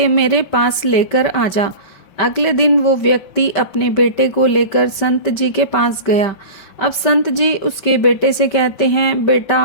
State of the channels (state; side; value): late; right; 5.2 ms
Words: मेरे पास लेकर आ जा। अगले दिन वो व्यक्ति अपने बेटे को लेकर संत जी के पास गया। अब संत जी उसके बेटे से कहते हैं,